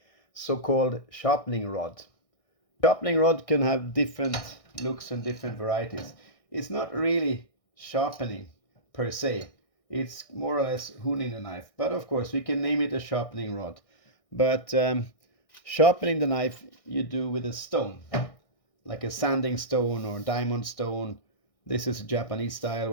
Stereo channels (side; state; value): right; late; 1.6 ms